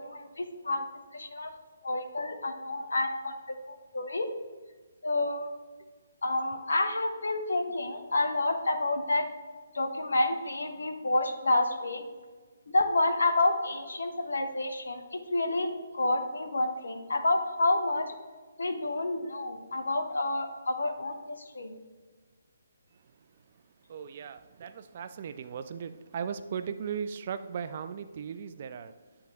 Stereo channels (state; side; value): inverted; both; correlation -0.86